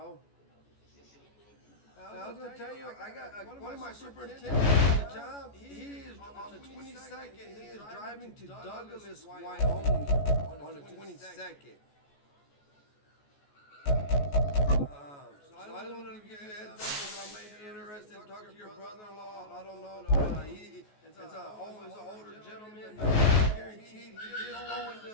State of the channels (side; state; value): right; late; 14 ms